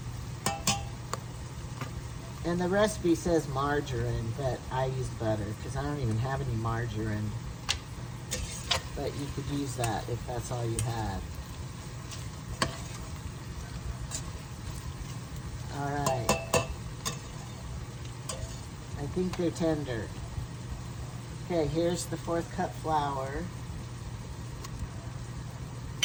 And the recipe says margarine, but I use butter because I don't even have any margarine. But you could use that if that's all you had. All right. I think they're tender. Okay, here's the 1/4 cup flour.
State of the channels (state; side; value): identical; both; correlation 1.00